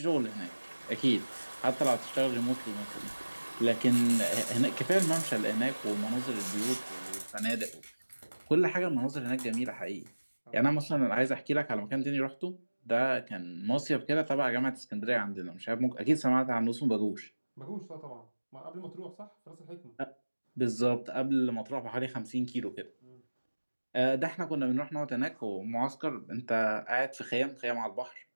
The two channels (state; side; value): inverted; both; correlation -1.00